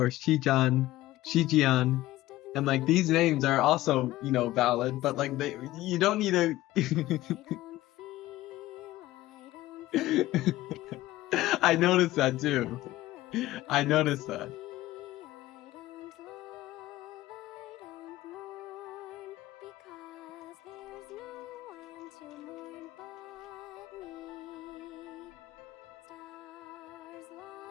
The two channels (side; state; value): right; quieter; 16.4 dB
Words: Shijian, and like these names are also valid, but like you don't need to. I noticed that too. I noticed that. I don't love, I don't mourn, because there's no one to mourn but me. Stars